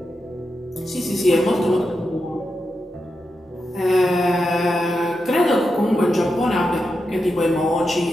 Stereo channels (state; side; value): normal; both; correlation 0.88